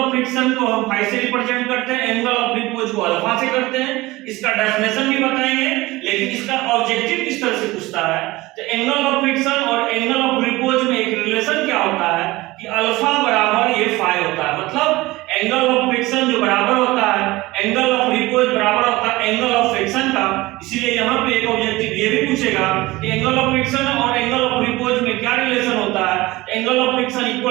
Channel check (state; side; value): quieter; left; 19.9 dB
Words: फ्रिक्शन को हम फाई से रिप्रेजेंट करते हैं, एंगल ऑफ रिपोज को अल्फा से करते हैं। इसका डेफिनेशन भी बताएंगे, लेकिन इसका ऑब्जेक्टिव किस तरह से पूछता है। तो एंगल ऑफ फ्रिक्शन और एंगल ऑफ रिपोज में एक रिलेशन क्या होता है कि अल्फा बराबर ये फाई होता है, मतलब एंगल ऑफ फ्रिक्शन जो बराबर होता है एंगल ऑफ रिपोज बराबर होता है एंगल ऑफ फ्रिक्शन का। इसीलिए यहाँ पे एक ऑब्जेक्टिव ये भी पूछेगा कि एंगल ऑफ फ्रिक्शन और एंगल ऑफ रिपोज में क्या रिलेशन होता है। Angle of friction